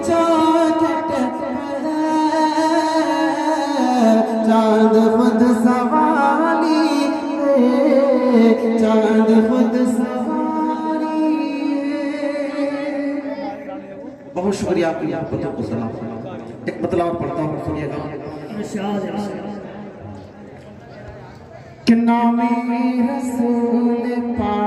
चौखट पर चांद खुद सवारी है, चांद खुद सवारी है। बहुत शुक्रिया आपकी मोहब्बतों को सलाम। एक मतलब और पढ़ता हूँ, सुनिएगा। कि नामे रसूल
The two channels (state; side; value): identical; both; correlation 1.00